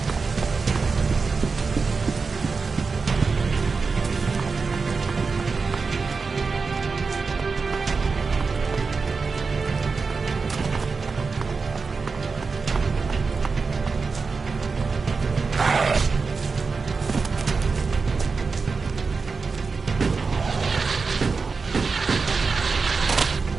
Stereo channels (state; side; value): quieter; left; 4.6 dB